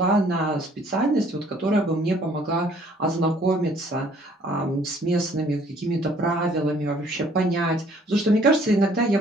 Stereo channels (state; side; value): normal; both; correlation 0.59